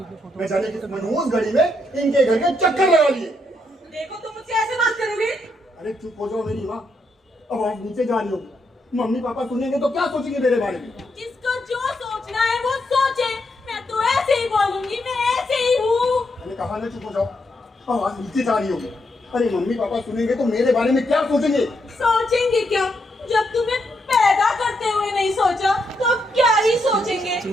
इनके घर के चक्कर लगा लिए। देखो तुम मुझसे ऐसे बात करोगे? अरे चुप हो जाओ मेरी माँ, अब आप नीचे जा रही होगी। मम्मी पापा सुनेंगे तो क्या सोचेंगे मेरे बारे में? जिसको जो सोचना है वो सोचे। मैं तो ऐसे ही बोलूंगी, मैं ऐसे ही हूँ। मैंने कहा ना चुप हो जाओ, अब आप नीचे जा रही होगी। अरे मम्मी पापा सुनेंगे तो मेरे बारे में क्या सोचेंगे? सोचेंगे क्या? जब तुम्हें पैदा करते हुए नहीं सोचा तो अब क्या ही सोचेंगे?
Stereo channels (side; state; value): both; normal; correlation 0.79